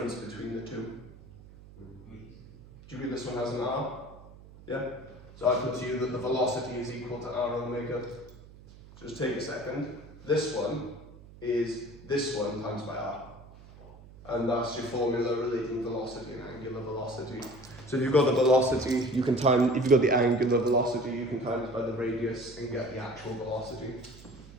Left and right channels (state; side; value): noise; right; hum, 20 dB below the sound